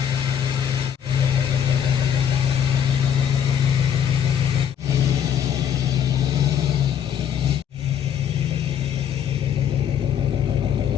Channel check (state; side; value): quieter; right; 8.8 dB